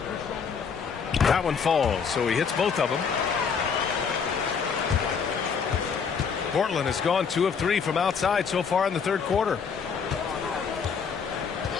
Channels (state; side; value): quieter; right; 6.2 dB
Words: That one falls, so he hits both of them. Portland has gone 2 of 3 from outside so far in the third quarter.